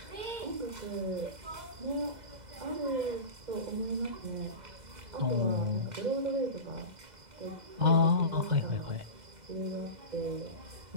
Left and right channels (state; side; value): late; left; 2.0 ms